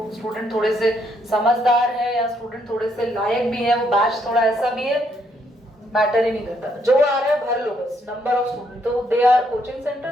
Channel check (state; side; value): normal; both; correlation 0.72